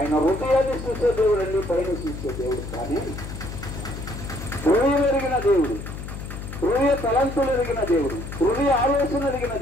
హృదయాన్ని చూసే దేవుడు అండి, పైన చూసే దేవుడు కానీ హృదయం ఎరిగిన దేవుడు, హృదయ తలంతులు ఎరిగిన దేవుడు, హృదయ ఆలోచన ఎరిగిన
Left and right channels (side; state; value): left; noise; hum, 9 dB below the sound